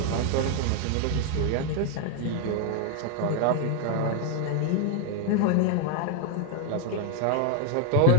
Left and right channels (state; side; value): different; both; correlation 0.01